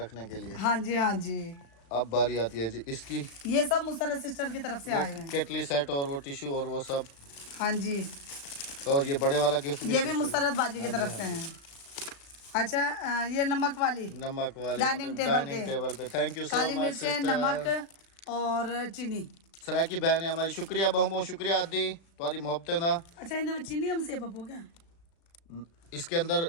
रखने के लिए। हाँ जी, हाँ जी, अब बारी आती है जी इसकी। ये सब मुसर्रत सिस्टर की तरफ से वो आए हैं। केटली सेट और वो टिश्यू और वो सब, हाँ जी, और ये बड़े वाला गिफ्ट भी ये भी sister मुसर्रत बाजी की तरफ से हैं। अच्छा, ये नमक वाली, की। नमक वाले डाइनिंग टेबल डाइनिंग पे। टेबल पे। Thank you so Kali much मिर्चें, सिस्टर। नमक और चीनी। सराकी बहन है हमारी, शुक्रिया बहु बहुत शुक्रिया आदि तुम्हारी मोहब्बतें ना। अच्छा, इनमें चीनी हम से पप्पो क्या? इसके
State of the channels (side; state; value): right; late; 36 ms